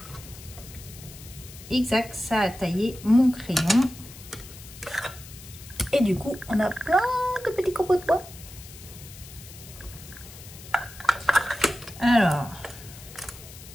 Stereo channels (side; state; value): left; noise; hiss, 17 dB below the sound